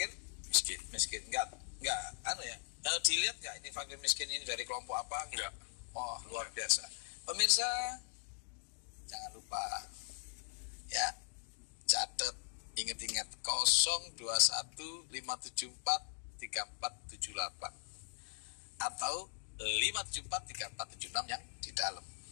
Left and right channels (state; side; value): silent; right; digital silence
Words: Miskin. Enggak, dilihat enggak ini fakir miskin ini dari kelompok apa? Enggak. Oh, luar biasa. Pemirsa, jangan lupa, ya, catat, ingat-ingat 0215743478 atau 5743476 yang di dalam.